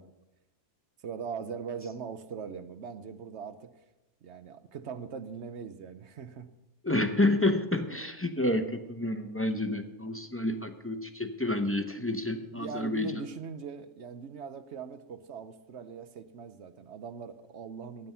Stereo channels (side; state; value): both; normal; correlation 0.40